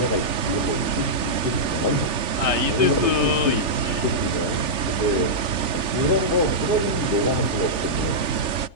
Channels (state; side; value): late; left; 3.4 ms